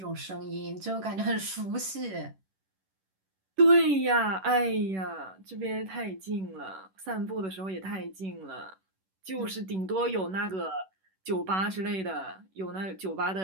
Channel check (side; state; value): left; late; 11 ms